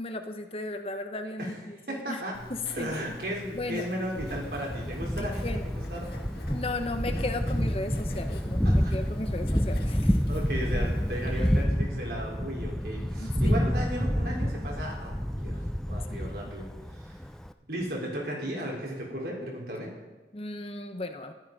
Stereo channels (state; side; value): normal; both; correlation 0.84